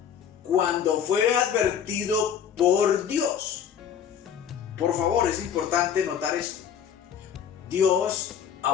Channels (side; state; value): right; quieter; 8.4 dB